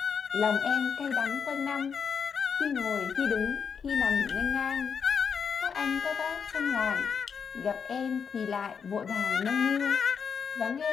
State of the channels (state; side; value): quieter; right; 6.5 dB